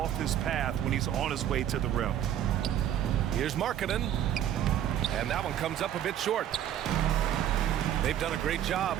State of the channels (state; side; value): quieter; left; 10.8 dB